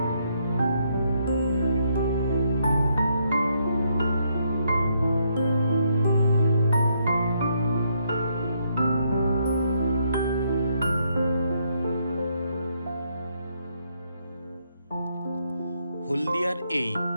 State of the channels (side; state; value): both; inverted; correlation -0.74